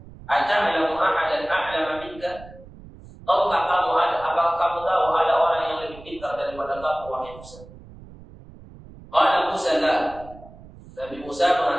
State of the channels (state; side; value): noise; right; rumble, 19 dB below the sound